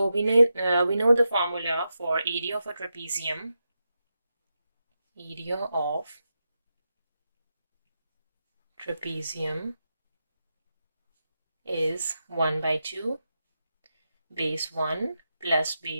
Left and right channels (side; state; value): both; inverted; correlation -0.88